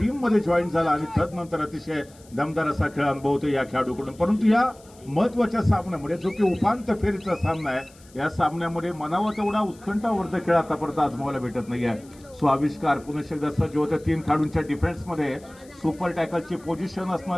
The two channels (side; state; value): left; noise; hiss, 26 dB below the sound